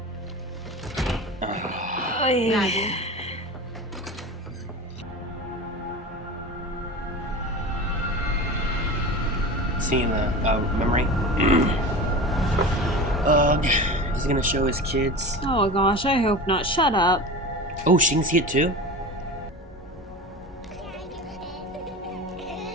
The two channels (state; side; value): normal; both; correlation 0.31